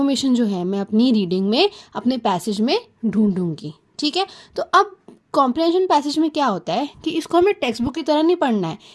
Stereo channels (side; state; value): both; identical; correlation 1.00